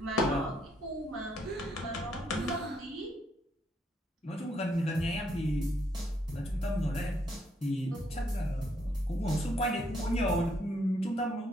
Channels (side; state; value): both; normal; correlation 0.73